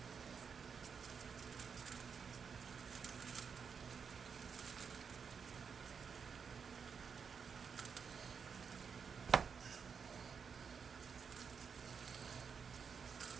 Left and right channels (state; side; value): quieter; left; 6.2 dB